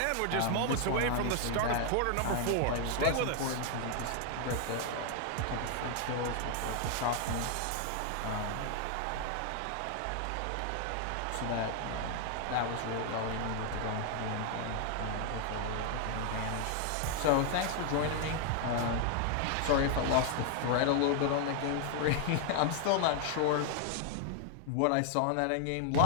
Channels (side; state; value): both; different; correlation 0.00